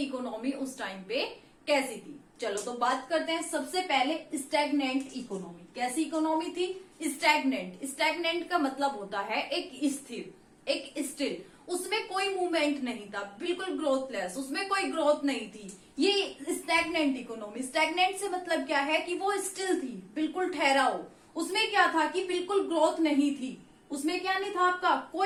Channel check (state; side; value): identical; both; correlation 1.00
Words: उस टाइम पे कैसी थी। चलो तो बात करते हैं। सबसे पहले स्टैग्नेंट इकोनॉमी। कैसी इकोनॉमी थी? स्टैग्नेंट। स्टैग्नेंट का मतलब होता है एक स्थिर, एक स्टिल, उसमें कोई मूवमेंट नहीं था, बिल्कुल ग्रोथलेस, उसमें कोई ग्रोथ नहीं थी। ये स्टैग्नेंट इकोनॉमी। स्टैग्नेंट से मतलब क्या है कि वो स्टिल थी, बिल्कुल ठहराव। उसमें क्या था कि बिल्कुल ग्रोथ नहीं थी। उसमें क्या नहीं था आपका?